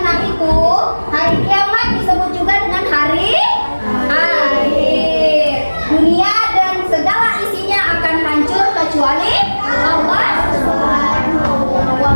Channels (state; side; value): inverted; both; correlation -1.00